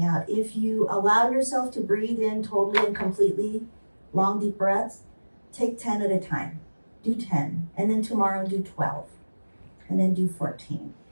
out. If you allow yourself to breathe in totally and completely, long, deep breaths, take 10 at a time. Do 10, and then tomorrow do 12, and then do 14.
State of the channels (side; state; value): both; inverted; correlation -1.00